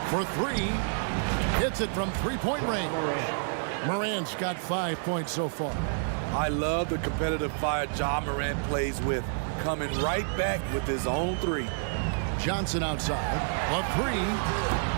For 3. Hits it from 3-point range. Morant's got 5 points so far. I love the competitive fire Ja Morant plays with, coming right back with his own 3. Johnson outside. A 3.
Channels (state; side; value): silent; left; digital silence